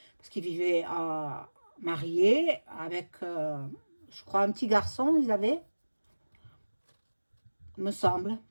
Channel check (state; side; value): inverted; both; correlation -1.00